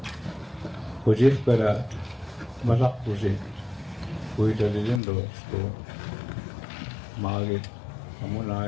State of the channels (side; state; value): right; drops out; at 5.0 s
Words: Kujit karat. Malak kujit. Kuy talilin do. So. Magit. Kamu na